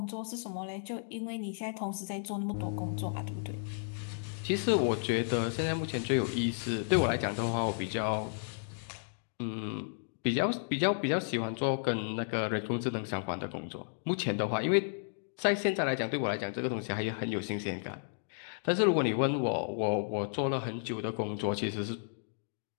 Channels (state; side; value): silent; right; digital silence